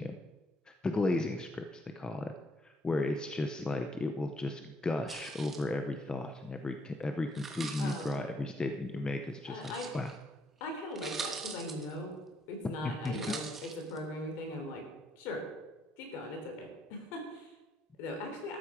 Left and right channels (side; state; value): both; normal; correlation 0.72